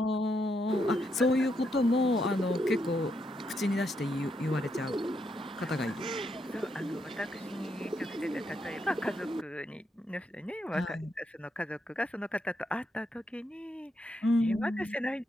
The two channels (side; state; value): both; normal; correlation 0.79